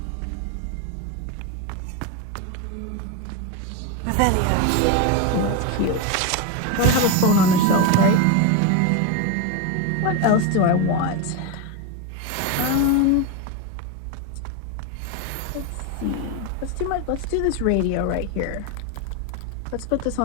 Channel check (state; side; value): different; both; correlation 0.03